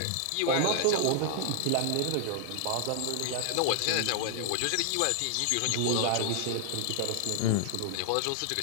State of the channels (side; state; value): both; different; correlation 0.00